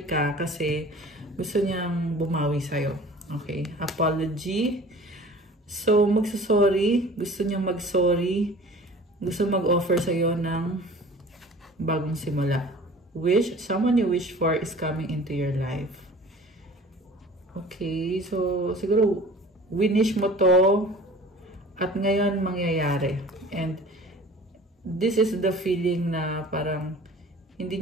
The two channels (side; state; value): both; normal; correlation 0.44